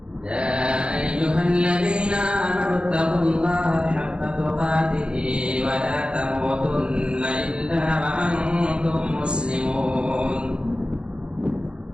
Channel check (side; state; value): left; late; 0.054 ms